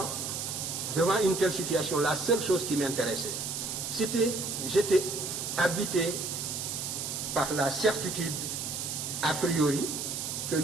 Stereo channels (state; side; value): noise; right; hiss, 4 dB below the sound